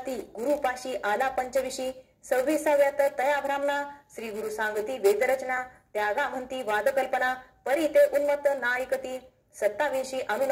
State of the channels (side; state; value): both; identical; correlation 1.00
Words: गुरुपाशी आला पंचविशी. 26व्यात तया ब्राह्मणा, श्री गुरु सांगती वेदरचना, त्यागा म्हणती वादकल्पना, परी ते उन्मत्त नायकती. 27